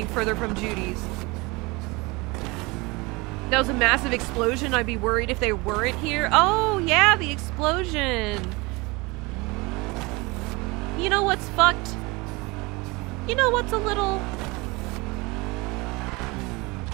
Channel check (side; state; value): left; quieter; 25.0 dB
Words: further from Judy's. That was a massive explosion. I'd be worried if they weren't here. Oh yeah, the explosion. You know what's fucked? You know what's a little...